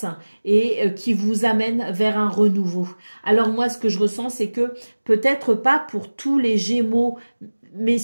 et qui vous amène vers un renouveau. Alors moi ce que je ressens c'est que peut-être pas pour tous les Gémeaux, mais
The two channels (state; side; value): inverted; both; correlation -1.00